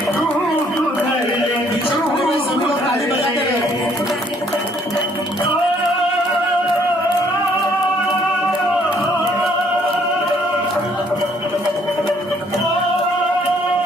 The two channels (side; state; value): both; normal; correlation 0.64